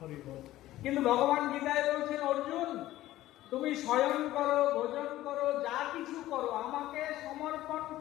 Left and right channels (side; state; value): right; quieter; 15.2 dB